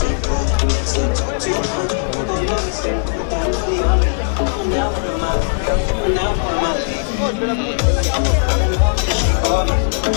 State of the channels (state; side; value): silent; right; 58 dB below the other